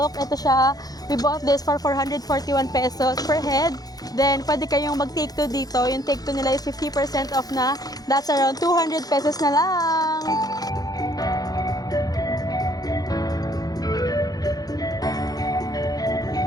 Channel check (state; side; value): late; right; 0.18 ms